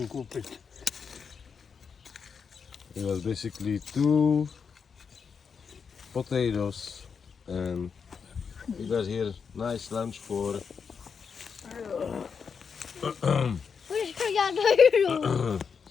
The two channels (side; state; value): right; quieter; 6.1 dB